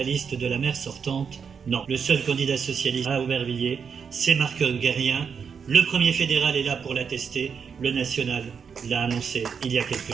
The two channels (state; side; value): quieter; left; 6.5 dB